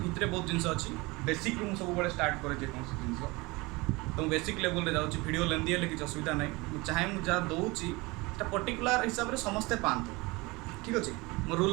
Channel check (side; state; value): left; quieter; 23.9 dB